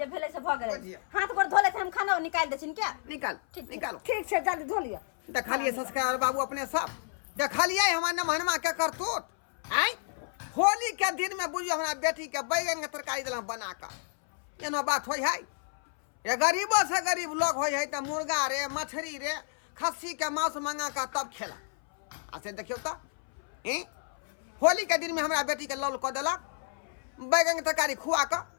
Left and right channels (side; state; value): right; silent; 58 dB below the other